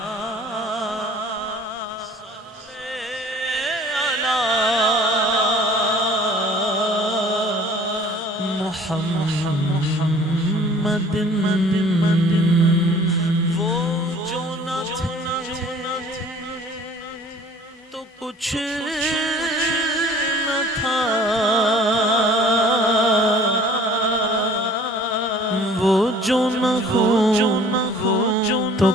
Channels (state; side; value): normal; both; correlation 0.51